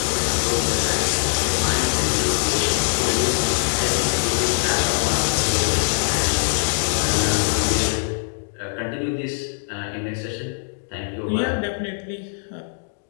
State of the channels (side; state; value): right; silent; digital silence